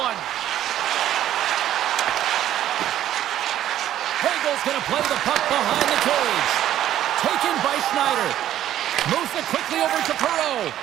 Hagel's going to play the puck behind the cage. Taken by Schneider. Moves it quickly over to Perreault.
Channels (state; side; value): quieter; left; 12.0 dB